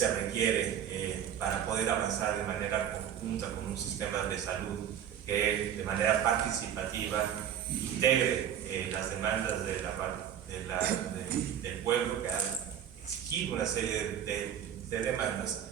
requiere para poder avanzar de manera conjunta con un sistema de salud que de manera participativa integre las demandas del pueblo, que ha exigido una serie de demandas,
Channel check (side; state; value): left; quieter; 9.5 dB